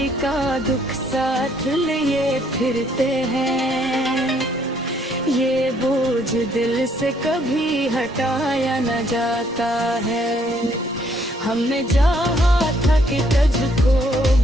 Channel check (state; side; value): normal; both; correlation 0.67